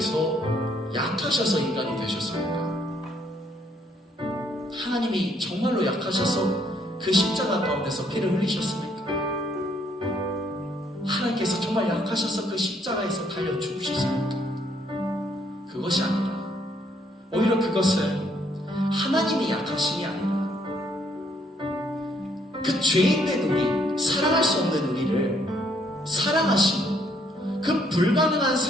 약하셔서 인간이 되셨습니까? 하나님이 정말로 약하셔서 그 십자가 가운데서 피를 흘리셨습니까? 하나님께서 정말 약하셔서 그 십자가에서 달려 죽으셨습니까? 그것이 아니라 오히려 그것은 하나님이 약하심이 아니라 그 죄인된 우리, 사랑할 수 없는 우리를 사랑하시고 그 불가능한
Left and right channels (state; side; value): normal; both; correlation 0.68